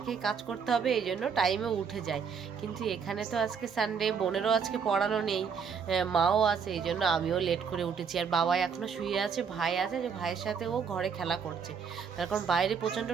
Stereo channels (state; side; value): quieter; left; 6.4 dB